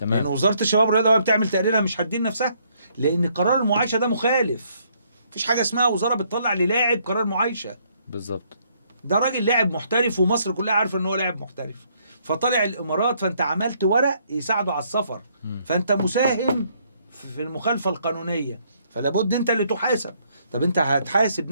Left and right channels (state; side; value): inverted; both; correlation -0.69